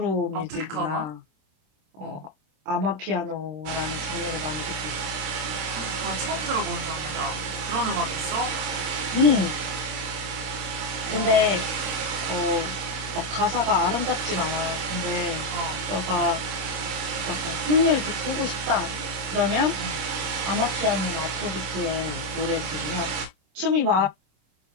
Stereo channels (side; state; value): left; late; 26 ms